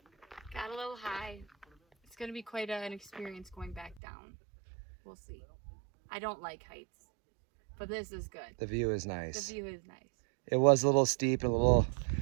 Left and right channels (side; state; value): left; drops out; at 4.0 s